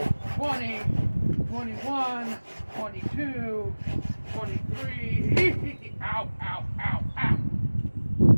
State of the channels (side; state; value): both; inverted; correlation -1.00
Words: 20, 21, 22, 23. Ow, ow, ow, ow.